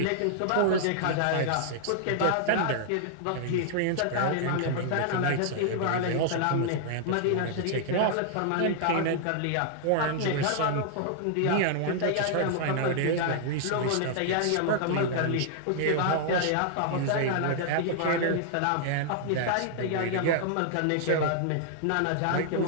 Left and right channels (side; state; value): both; different; correlation -0.01